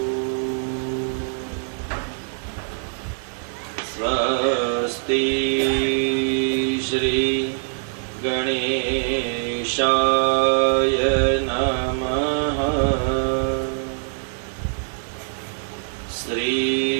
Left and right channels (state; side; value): silent; left; 63 dB below the other